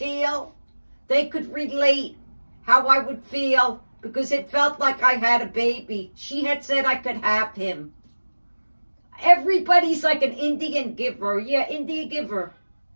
they could relate how I would feel because it felt like I had a baby. She had said I could have him. Everybody's like an Indian giver. Yeah, Indian giver.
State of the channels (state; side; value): inverted; both; correlation -1.00